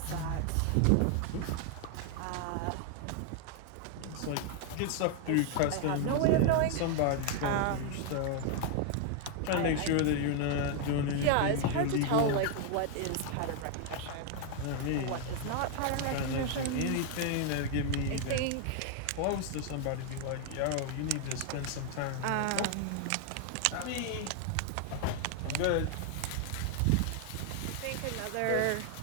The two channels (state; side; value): different; both; correlation 0.00